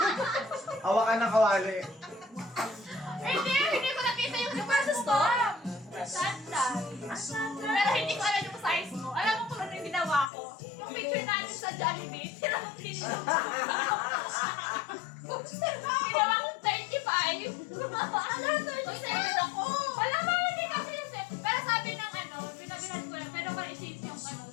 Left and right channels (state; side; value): drops out; right; at 10.3 s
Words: Hawakan ng kawali. Hindi ko nakita yung super sa store. Sandal. Pero hindi ko alam yung size mo. Alam mo kung ano yung ginawa ko? Yung picture natin sa Jollibee, tinawag pinilong ko. Ginawa kong 35. Ano, 37 ako. Wala ba, hindi kasi yung set. Pero sabi ng ano, binabilan ko lang, pero kung i-change yung ano,